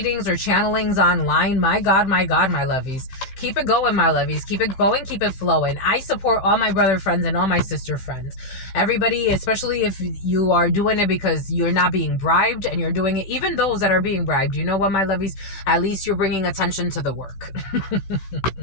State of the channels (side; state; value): right; late; 16 ms